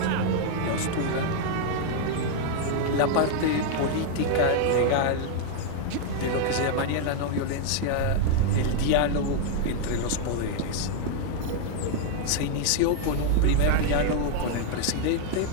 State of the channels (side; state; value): both; different; correlation 0.00